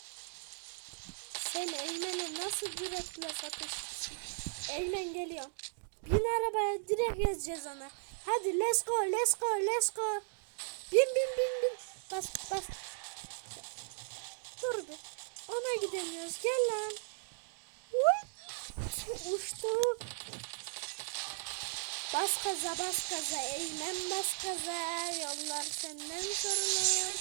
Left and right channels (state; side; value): silent; left; digital silence